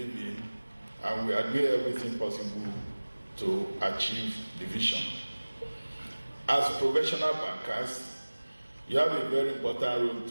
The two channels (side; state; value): both; inverted; correlation -1.00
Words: and we are doing everything possible to achieve the vision. As professional bankers, you have a very important role